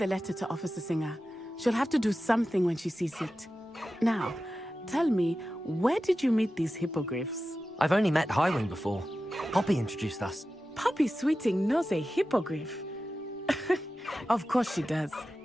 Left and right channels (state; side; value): normal; both; correlation 0.93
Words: letter to Officer Singer. She'll have to do something when she sees it. Now, tell me, where did you meet these hippogriffs? I've only met Highwing before. Poppy introduced us. Poppy Sweeting knows a hippogriff. Of course she does.